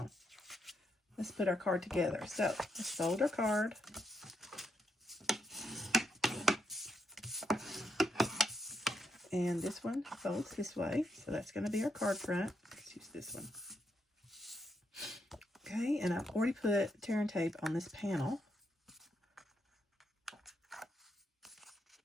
let's put our card together. So, let's fold our card. And this one folds this way, so that's going to be our card front. Let's use this one. Okay, and I've already put tear and tape on this panel.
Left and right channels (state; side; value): normal; both; correlation 0.79